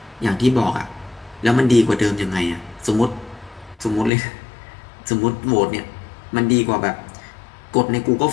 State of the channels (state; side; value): drops out; right; at 4.1 s